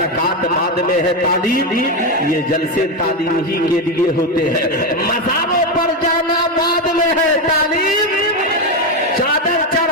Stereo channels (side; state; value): both; normal; correlation 0.10